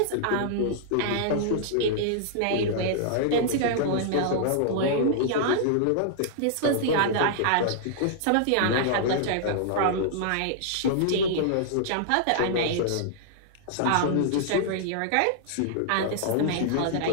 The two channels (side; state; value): both; different; correlation -0.01